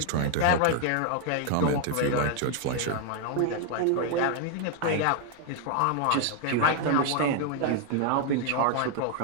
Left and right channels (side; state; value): both; different; correlation 0.00